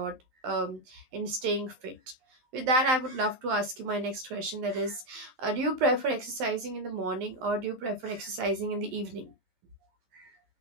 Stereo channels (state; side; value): late; left; 12 ms